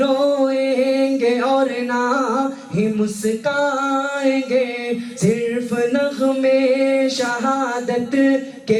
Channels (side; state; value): both; identical; correlation 1.00